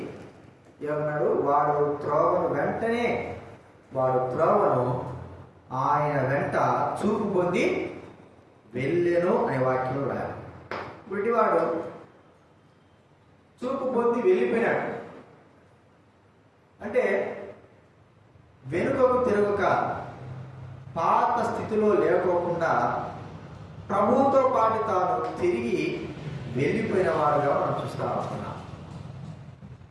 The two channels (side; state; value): both; identical; correlation 1.00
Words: ఏమన్నాడు? వాడు త్రోవను ఆయన వెంట చూపు పొంది వెళ్ళెను అనే వాక్యం రాయాలి. గుడ్డివాడు చూపు పొంది వెళ్ళిపోయినాడు అంటే వెనుకకు తిరగక పాత స్థితిలో లేకోకుండా ప్రభువుతో పాటు తాను తిరిగి వెళ్ళిపోయిన వాడుగా మనం చూస్తా ఉంటున్నాం.